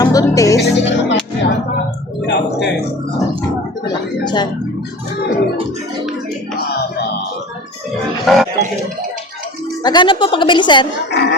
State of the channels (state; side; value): normal; both; correlation 0.38